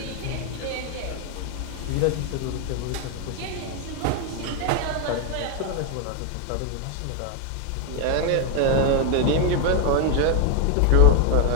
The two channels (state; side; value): different; both; correlation 0.01